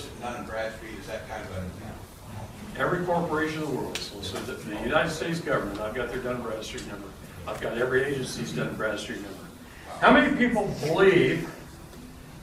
in Dun & Bradstreet? Is that kind of a... every corporation in the world. So the United States government, I've got their Dun & Bradstreet number. I've got every agency's Dun & Bradstreet number. How many people believe,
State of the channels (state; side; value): identical; both; correlation 1.00